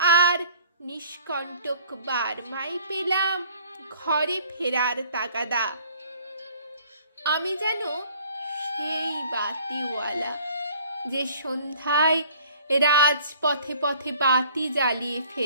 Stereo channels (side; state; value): both; inverted; correlation -0.54